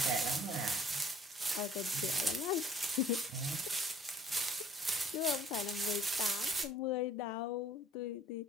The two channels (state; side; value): normal; both; correlation 0.55